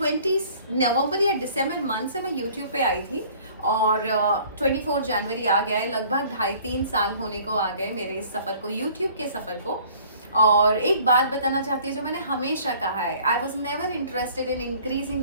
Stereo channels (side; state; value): both; inverted; correlation -0.53